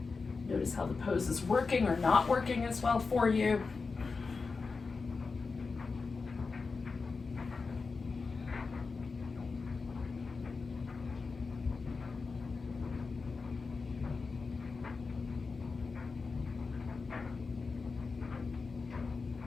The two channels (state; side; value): quieter; right; 4.4 dB